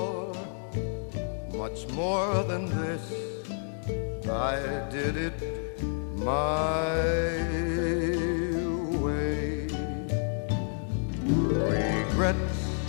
much more than this, I did it my way. Regrets,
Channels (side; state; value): right; silent; digital silence